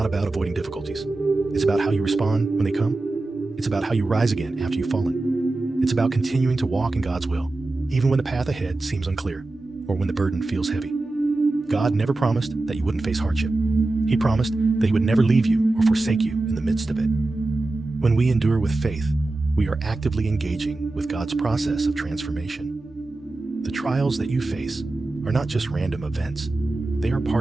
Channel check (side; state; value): left; quieter; 3.0 dB